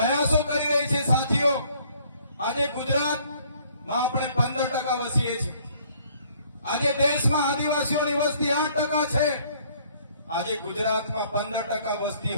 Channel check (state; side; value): inverted; both; correlation -0.60